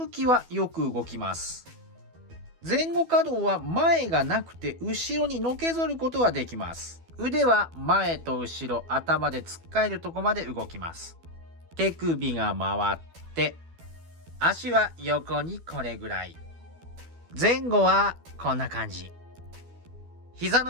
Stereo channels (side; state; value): left; late; 12 ms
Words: きはよく動きます。前後可動は前がなくて後ろにのけぞることができます。腕は前と後ろ、頭でつっかえるとこまで動きます。手首が回って、足は横にこれぐらい。前後はこんな感じ。膝